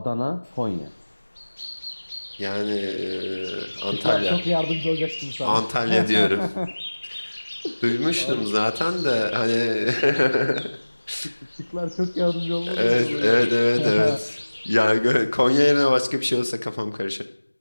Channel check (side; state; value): both; inverted; correlation -1.00